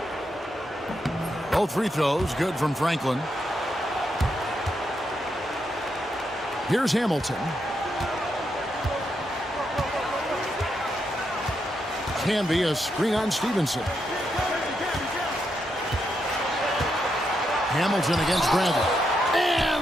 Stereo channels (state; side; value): normal; both; correlation 0.82